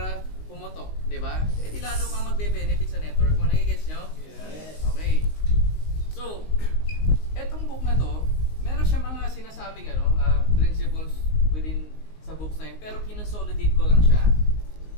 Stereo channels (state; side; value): late; right; 19 ms